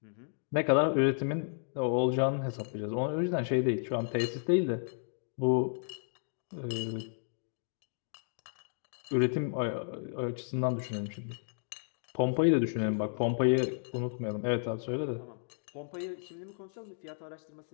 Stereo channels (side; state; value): right; silent; digital silence